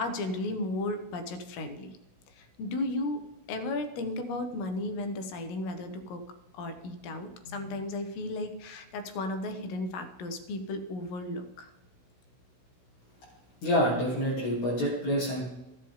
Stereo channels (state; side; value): late; right; 16 ms